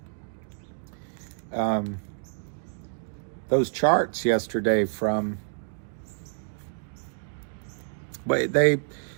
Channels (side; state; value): left; silent; digital silence